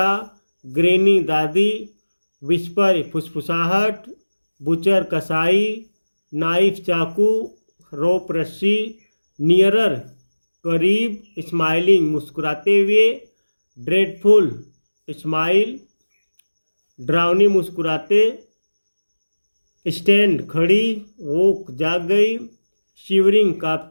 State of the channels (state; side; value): inverted; both; correlation -1.00